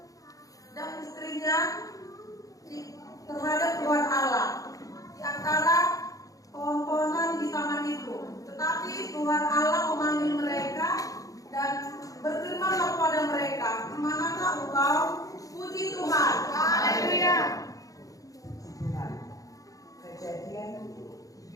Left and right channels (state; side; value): late; right; 0.17 ms